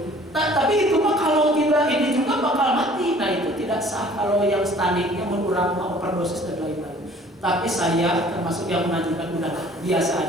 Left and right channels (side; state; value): both; normal; correlation 0.52